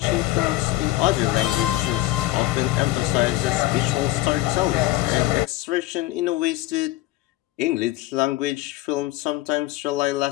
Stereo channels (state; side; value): quieter; right; 16.7 dB